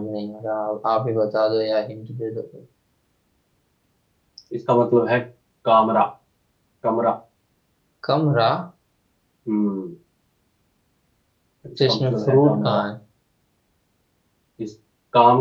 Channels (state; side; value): identical; both; correlation 1.00